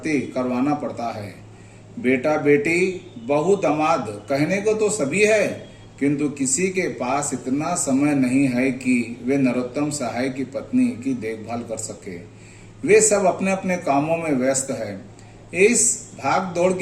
करवाना पड़ता है। बेटा बेटी, बहू, दामाद कहने को तो सभी है, किंतु किसी के पास इतना समय नहीं है कि वे नरोत्तम सहाय की पत्नी की देखभाल कर सके। वे सब अपने अपने कामों में व्यस्त है। इस भाग दौड़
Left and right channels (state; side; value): identical; both; correlation 1.00